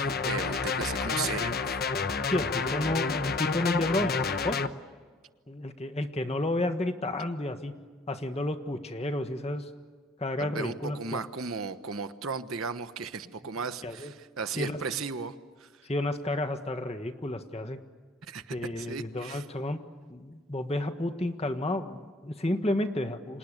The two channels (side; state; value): both; normal; correlation 0.53